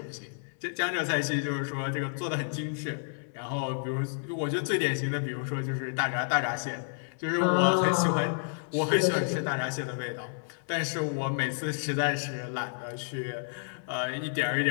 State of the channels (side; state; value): right; silent; 58 dB below the other